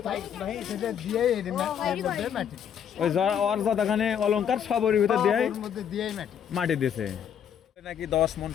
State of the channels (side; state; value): right; quieter; 8.6 dB